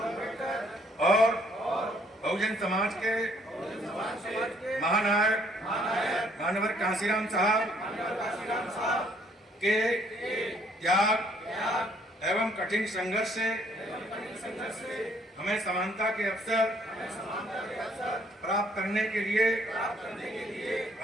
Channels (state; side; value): normal; both; correlation 0.65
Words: और बहुजन समाज के महानायक मानवर कांसीराम साहब के त्याग एवं कठिन संघर्ष से हमें समानता के अवसर प्राप्त करने के लिए